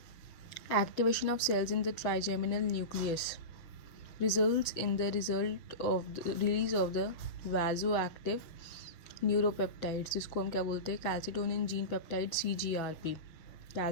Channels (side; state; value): right; late; 6.8 ms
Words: Activation of cells in the trigeminal nucleus results in the result of the release of the vasoactive neuropeptides, जिसको हम क्या बोलते हैं? Calcitonin gene peptide, CGRP।